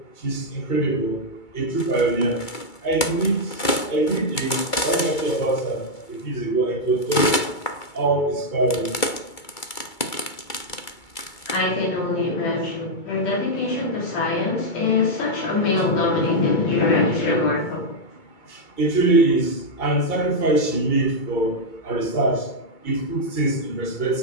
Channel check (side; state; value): right; late; 2.3 ms